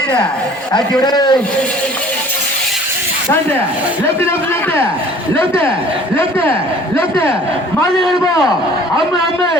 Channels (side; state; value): both; normal; correlation 0.51